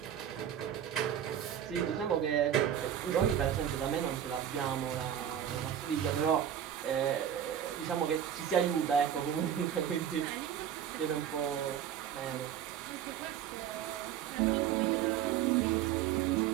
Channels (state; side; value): quieter; left; 9.7 dB